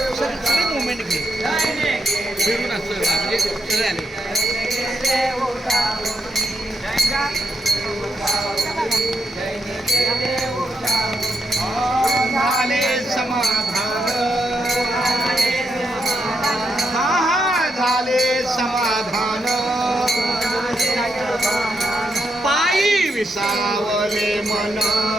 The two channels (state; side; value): normal; both; correlation 0.82